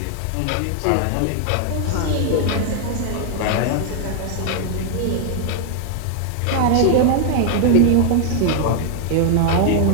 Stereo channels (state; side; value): different; both; correlation 0.00